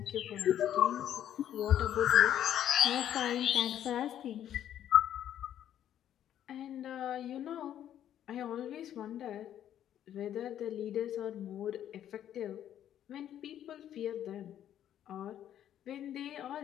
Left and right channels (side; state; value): right; quieter; 10.8 dB